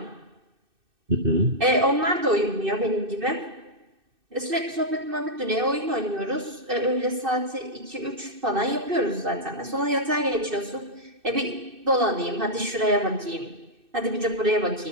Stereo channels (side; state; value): left; late; 2.6 ms